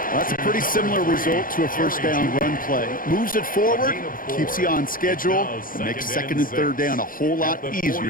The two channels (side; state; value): right; late; 0.40 ms